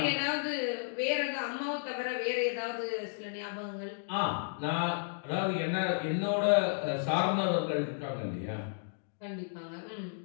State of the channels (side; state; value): right; silent; digital silence